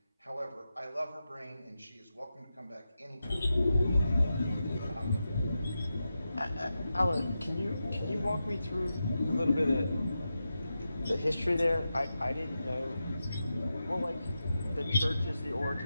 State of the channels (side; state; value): both; inverted; correlation -0.90